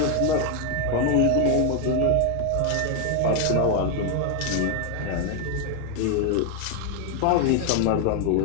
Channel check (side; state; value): both; different; correlation 0.01